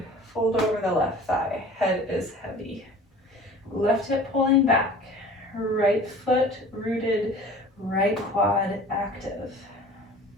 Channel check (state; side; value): normal; both; correlation 0.44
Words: Fold over the left thigh. Head is heavy. Left hip pulling back. Right foot rooted. Right quad active.